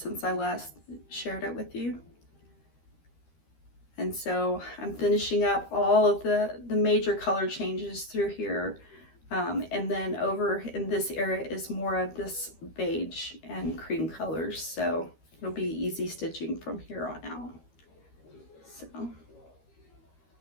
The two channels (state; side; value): late; right; 13 ms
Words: I last shared it with you. And so I'm finishing up all of the major color changes through here. And then over in this area is more of this beige and cream colors. So it'll be easy stitching from here on out. So,